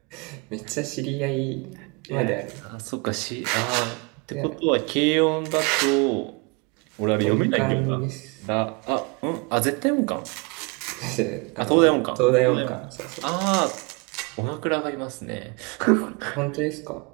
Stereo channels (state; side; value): quieter; left; 29.5 dB